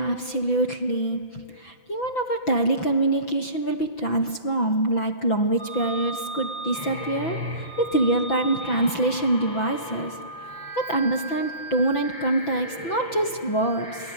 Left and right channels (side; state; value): right; late; 6.0 ms